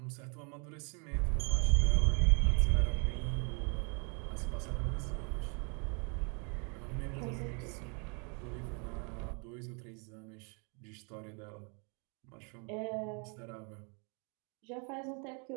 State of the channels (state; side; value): quieter; left; 36.1 dB